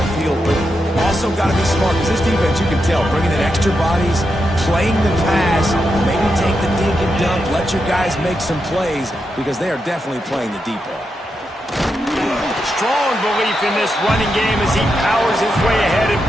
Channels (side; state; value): both; normal; correlation 0.85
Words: field. But also got to be smart, because this defense, you can tell, bringing in extra bodies, playing the pass, maybe take the dink and dunk, let your guys make some plays, because they are definitely playing the deep ball. Strong belief in this running game as he powers his way ahead and